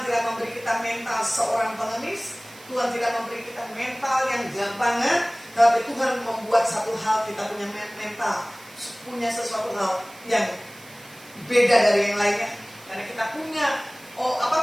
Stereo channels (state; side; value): noise; right; hiss, 22 dB below the sound